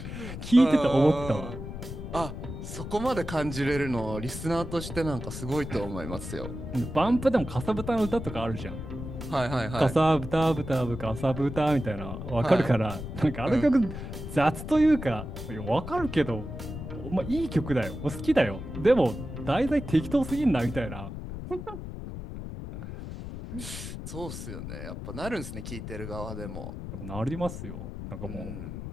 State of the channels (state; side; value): noise; left; rumble, 8 dB below the sound